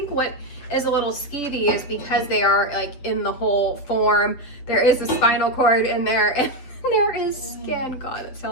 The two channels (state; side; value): late; right; 7.9 ms